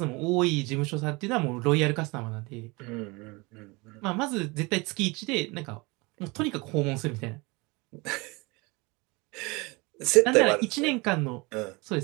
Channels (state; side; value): quieter; left; 25.8 dB